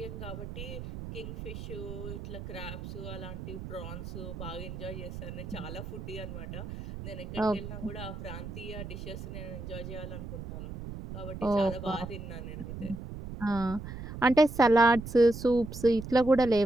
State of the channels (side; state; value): right; noise; rumble, 9 dB below the sound